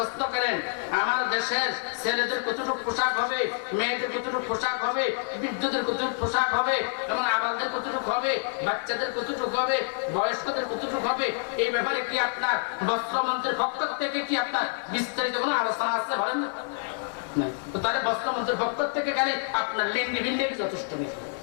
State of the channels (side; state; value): right; silent; 60 dB below the other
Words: করেন আমার দেশের ছেলেদের কতটুকু পোশাক হবে, মেয়েদের কতটুকু পোশাক হবে, বৃদ্ধদের কতটুকু পোশাক হবে, এবং আবালদের কতটুকু হবে, বাচ্চাদের কতটুকু হবে, বয়স্কদের কতটুকু হবে, এই ব্যাপারে কি আপনার বস্ত্রমন্ত্রীর পক্ষ থেকে কি আপনার বিস্তারিত কোনো আলোচনা আছে বলেন না? তো তাহলে বস্ত্রমন্ত্রীর পক্ষ থেকে গেলে আপনার লেন্ডি বিন্ডি যথেষ্ট নেই।